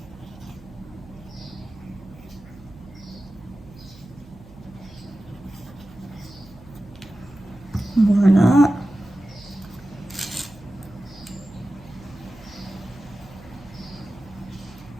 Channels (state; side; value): noise; right; hum, 21 dB below the sound